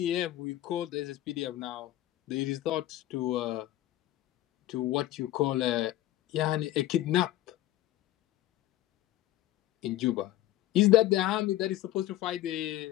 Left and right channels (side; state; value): right; quieter; 14.4 dB